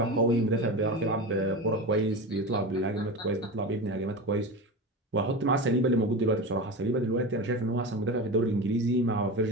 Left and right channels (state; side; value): normal; both; correlation 0.25